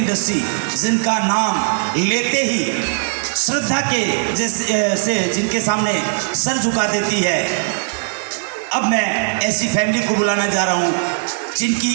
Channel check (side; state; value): left; silent; 67 dB below the other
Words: जिनका नाम लेते ही श्रद्धा के जैसे जिनके सामने सर झुका देती है, अब मैं ऐसी फैमिली को बुलाना जा रहा हूँ जिनकी